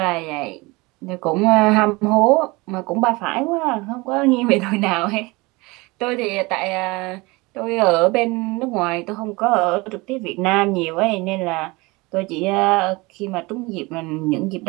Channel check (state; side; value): quieter; left; 24.0 dB